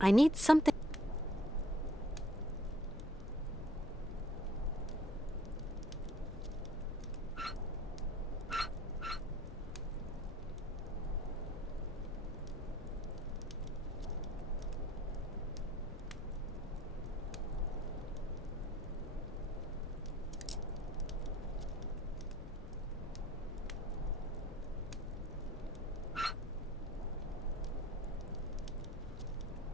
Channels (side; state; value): left; noise; rumble, 12 dB below the sound